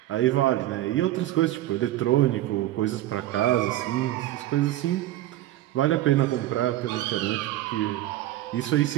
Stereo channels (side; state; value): left; quieter; 14.6 dB